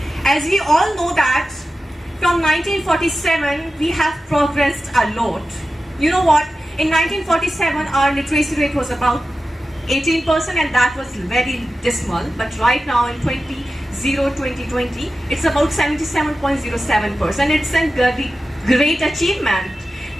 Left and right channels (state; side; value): normal; both; correlation 0.93